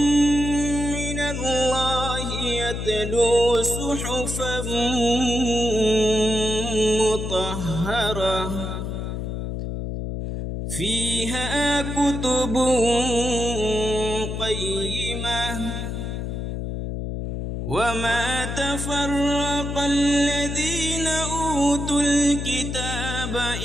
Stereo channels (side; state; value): left; noise; hum, 4 dB below the sound